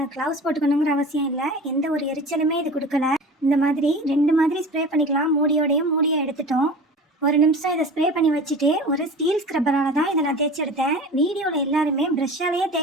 க்ளவுஸ் போட்டுக்கணுங்கிற அவசியம் இல்லை, எந்த ஒரு எரிச்சலுமே இது கொடுக்கல. இந்த மாதிரி 2 மாதிரி ஸ்ப்ரே பண்ணிக்கலாம். மூடியை எடுத்துட்டோம். ஒரு நிமிஷம் இதை ஸ்ப்ரே பண்ணி வச்சுட்டு ஒரு ஸ்டீல் ஸ்க்ரப்பரால் தான் இதை நான் தேய்ச்சி எடுத்தேன். வீடியோவில் எல்லாருமே ப்ரஷ்ஷாலேயே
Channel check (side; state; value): both; normal; correlation 0.36